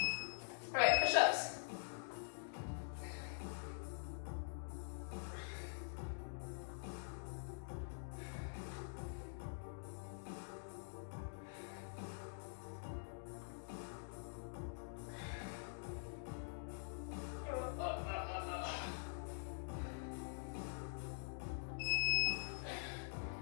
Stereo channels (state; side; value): silent; right; digital silence